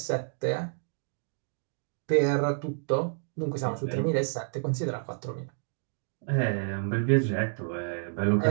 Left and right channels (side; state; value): left; silent; digital silence